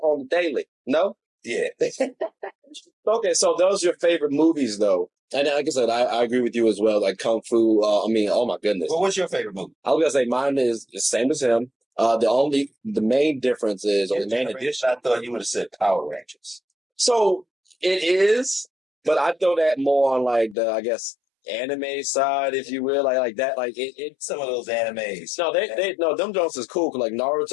the daily. No? Yeah. Okay, so those are your favorite movies, though. And like I said, I agree with you as well. Like Kung Fu. I mean, oh my goodness. Well, what's your favorite movie? I was gonna say mine is the same as him. The main difference is, or the main addition. I thought you would have said Power Rangers. So it is, but I throw that more on like the, I guess, anime side, if you will, like that, like it. Some of those animes. No, they no, them Jones is cool. 'Cause, like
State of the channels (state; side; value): drops out; right; at 20.6 s